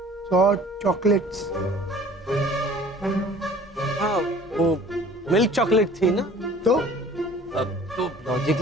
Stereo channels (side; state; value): both; normal; correlation 0.49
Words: चॉकलेट्स। हाँ, वो मिल्क चॉकलेट थी ना। तो तो